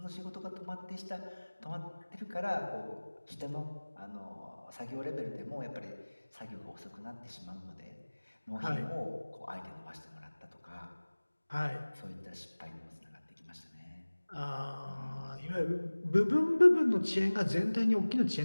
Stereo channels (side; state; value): both; inverted; correlation -1.00